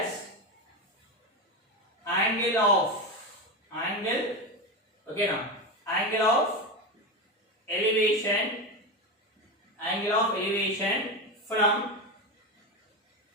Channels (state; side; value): normal; both; correlation 0.17